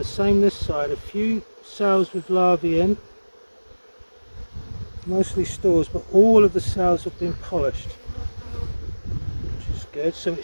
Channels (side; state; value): both; inverted; correlation -1.00